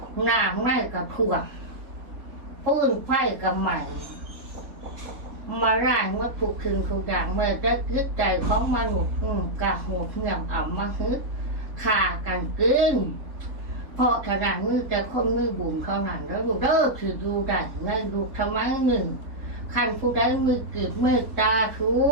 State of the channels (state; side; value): late; left; 3.5 ms